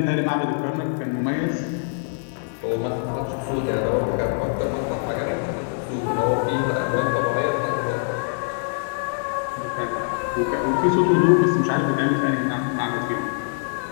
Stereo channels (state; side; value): silent; right; digital silence